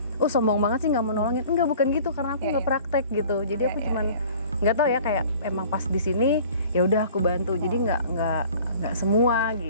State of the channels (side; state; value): both; inverted; correlation -0.48